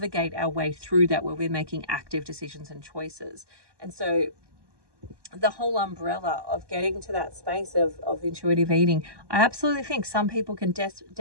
our way through that, where we're making active decisions and choices. And so the whole umbrella of getting to that space of intuitive eating, I absolutely think some people can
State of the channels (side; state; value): left; late; 1.2 ms